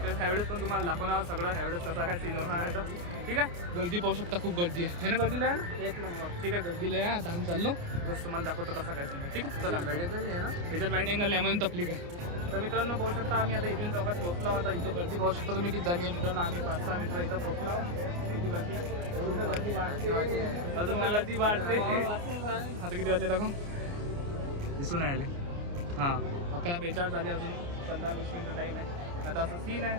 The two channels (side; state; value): left; late; 29 ms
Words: वेळेस. ह्यावेळेस पण तुम्हाला दाखवणार सगळं. ह्यावेळेस कसा काय सीन होणार आहे तर ठीक आहे. गर्दी पाहू शकता, खूप गर्दी आहे ना. गर्दीला आहे ना, एक नंबर. ठीक आहे, गर्दीला आहे. आता आम्ही चाललो बस. तुम्हाला दाखवतो कसा काय सीन आहे. ठीक आहे, चला. वाईड अँगल आहे ना, त्याच्यात वाईड अँगल नाही म्हणून तपलीक आहे. तर मित्रांनो, पाहू शकता आम्ही आता इरिन चौकात पोहोचलो. आता इथं गर्दी पाहू शकता तुम्ही किती झाली आहे मित्रांनो. आम्ही 5-6 मित्र इथं पोहोचलो. किती गर्दी आहे, अजून तर गर्दी वाढते. आता किती वाजले दाखव, दिसून आले. हां, 11:42 झाले. अजून 15-20 मिनिटं टाईम आहे. आता असं सीन आहे.